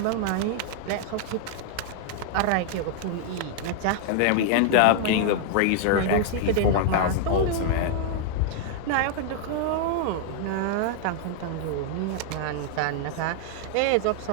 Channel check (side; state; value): both; different; correlation 0.00